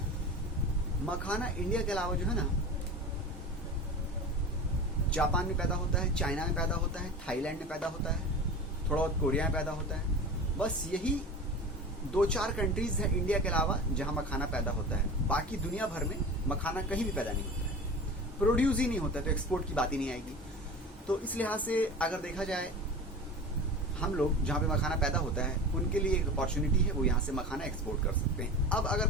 मखाना इंडिया के अलावा जो है ना, जापान में पैदा होता है, चाइना में पैदा होता है, थाईलैंड में पैदा होता है, थोड़ा बहुत कोरिया में पैदा होता है। बस यही 2-4 कंट्रीज है इंडिया के अलावा जहां मखाना पैदा होता है। बाकी दुनिया भर में मखाना कहीं भी पैदा नहीं होता है, प्रोड्यूस ही नहीं होता है, तो एक्सपोर्ट की बात ही नहीं आएगी। तो इस लिहाज से अगर देखा जाए, हम लोग जहां पे मखाना पैदा होता है उनके लिए एक अपॉर्चुनिटी है, वो यहाँ से मखाना एक्सपोर्ट कर सकते हैं। अब अगर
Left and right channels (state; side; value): normal; both; correlation 0.33